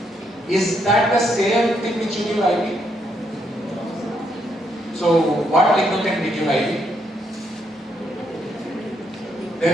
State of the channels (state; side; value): normal; both; correlation 0.76